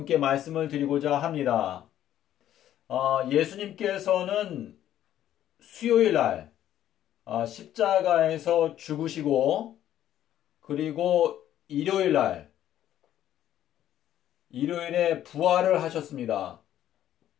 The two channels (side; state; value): right; quieter; 11.8 dB